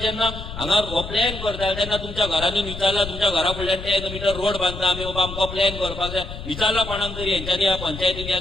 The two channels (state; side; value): noise; left; rumble, 10 dB below the sound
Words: जेन्ना हांगा हो प्लॅन करता तेन्ना तुमच्या घरांनी विचारला, तुमच्या घरा फुडल्यान 10 मिटर रोड बांदता आमी, बाबा आमकां प्लॅन करपाक जाय, विचारला कोणाक तरी? हेंच्यांनी, ह्या पंचायतीन, ह्या